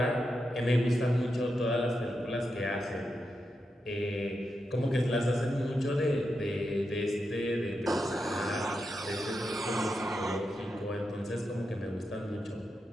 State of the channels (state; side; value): normal; both; correlation 0.87